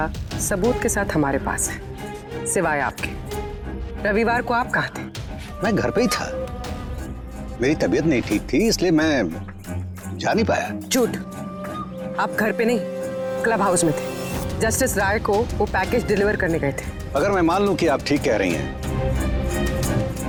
सबूत के साथ हमारे पास है, सिवाय आपके। रविवार को आप कहाँ थे? मैं घर पे ही था। मेरी तबीयत नहीं ठीक थी, इसलिए मैं जा नहीं पाया। झूठ। आप घर पे नहीं, क्लब हाउस में थे। जस्टिस राय को वो पैकेज डिलीवर करने गए थे। अगर मैं मान लूं कि आप ठीक कह रही हैं,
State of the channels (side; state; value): both; identical; correlation 1.00